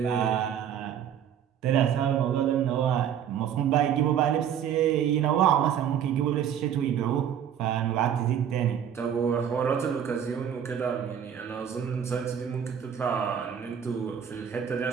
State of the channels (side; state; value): left; quieter; 9.0 dB